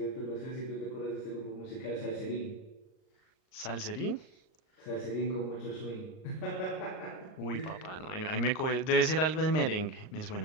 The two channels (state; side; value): late; right; 38 ms